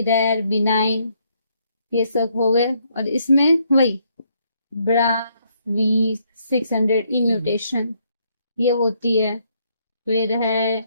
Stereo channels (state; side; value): inverted; both; correlation -0.72